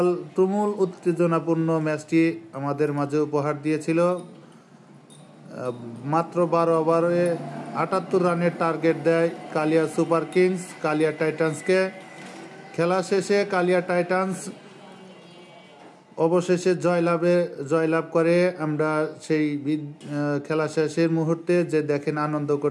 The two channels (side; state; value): both; identical; correlation 1.00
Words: তুমুল উত্তেজনাপূর্ণ ম্যাচটি আমাদের মাঝে উপহার দিয়েছিল। মাত্র 12 ওভারে 78 রানের টার্গেট দেয় কালিয়া সুপার কিংস কালিয়া টাইটান্সকে। খেলা শেষে কালিয়া টাইটান্স অবশেষে জয়লাভ করে। আমরা সেই খেলা শেষের মুহূর্তে যে দেখেন আনন্দ